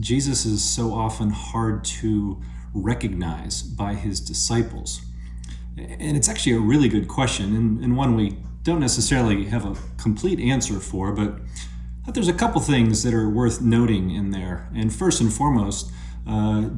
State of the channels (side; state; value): both; identical; correlation 1.00